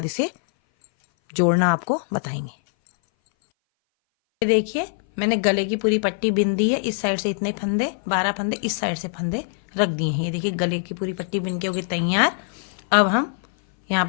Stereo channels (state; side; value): silent; right; 59 dB below the other